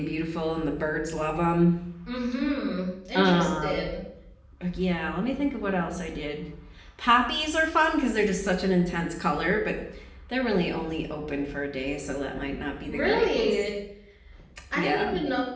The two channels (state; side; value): identical; both; correlation 1.00